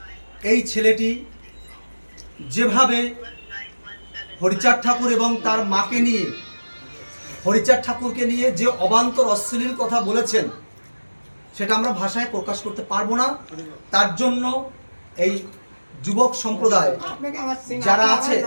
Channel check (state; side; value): inverted; both; correlation -1.00